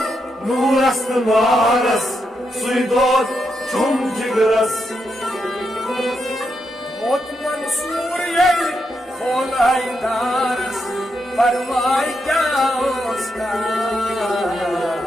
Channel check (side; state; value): both; normal; correlation 0.83